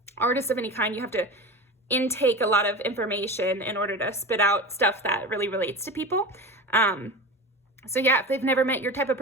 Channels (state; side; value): normal; both; correlation 0.29